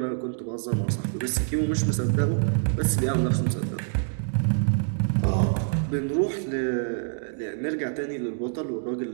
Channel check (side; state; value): left; silent; digital silence